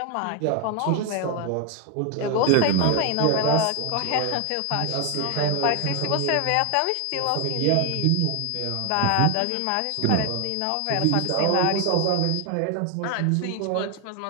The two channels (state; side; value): different; both; correlation 0.01